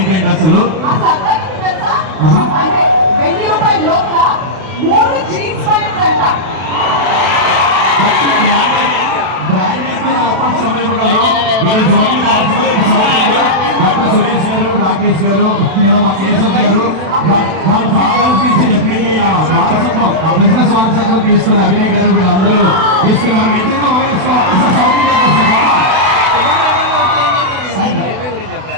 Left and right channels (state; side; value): late; left; 32 ms